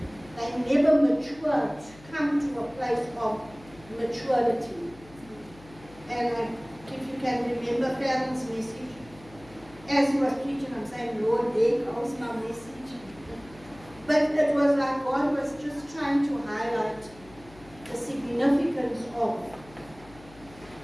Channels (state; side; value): noise; left; hum, 22 dB below the sound